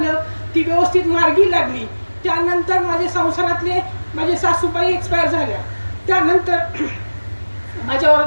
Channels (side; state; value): both; inverted; correlation -1.00